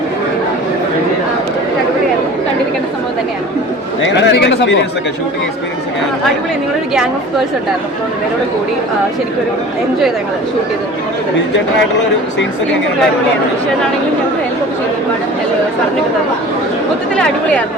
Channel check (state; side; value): normal; both; correlation 0.41